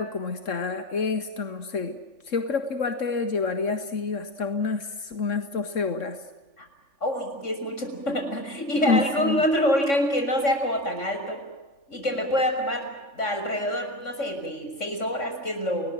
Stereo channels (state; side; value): late; right; 3.6 ms